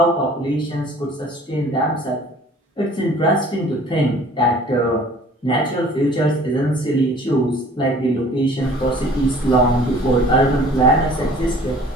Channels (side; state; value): both; normal; correlation 0.50